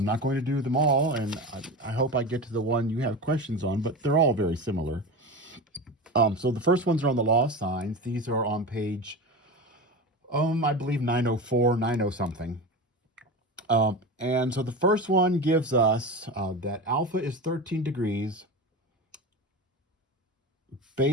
not going to do them all, and I hope I get to the one you have questions on, but they're all very similar. So the first ones are on the law of sines. These are on page, I believe 904, 90 something. And so the first one gives us that alpha is 13 degrees,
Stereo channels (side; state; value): both; normal; correlation 0.26